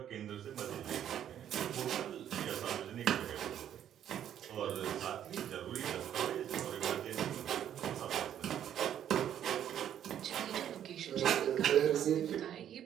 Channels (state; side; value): quieter; left; 10.2 dB